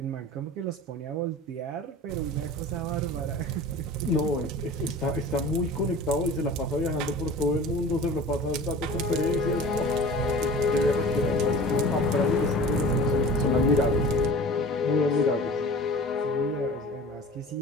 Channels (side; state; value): both; normal; correlation 0.40